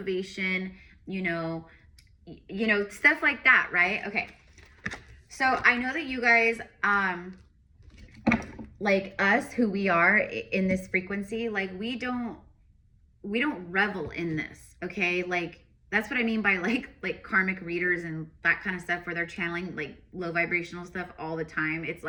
you know, stuff like that, right? Okay. So I know that you guys, like us, who we are in this frequency, like we don't revel in this, okay? Like that's what I mean by like karmic readers and that kind of stuff, where they're channeling like low vibrational stuff all the time. It's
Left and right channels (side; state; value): both; identical; correlation 1.00